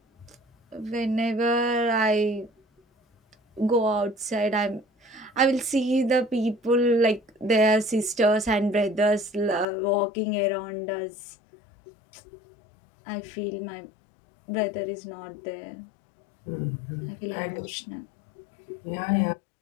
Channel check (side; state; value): right; drops out; at 9.7 s